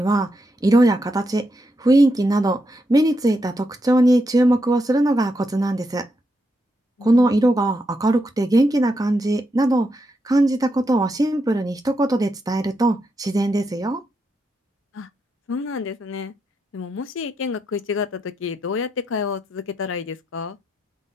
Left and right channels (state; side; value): normal; both; correlation 0.83